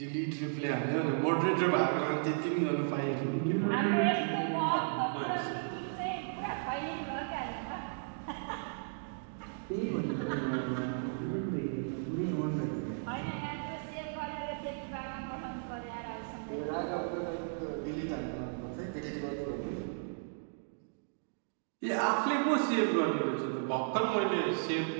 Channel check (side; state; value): left; silent; digital silence